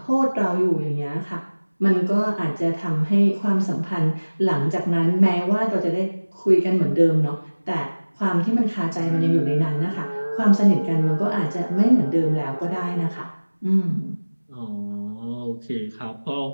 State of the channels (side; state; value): both; inverted; correlation -1.00